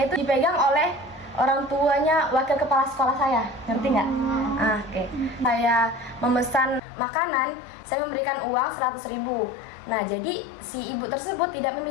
itu dipegang oleh orang tuanya wakil kepala sekolah saya, ngerti nggak? Oke. Saya memesan makanan, saya memberikan uang 100.000. Nah, jadi si ibu tersebut tidak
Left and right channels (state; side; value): drops out; right; at 6.8 s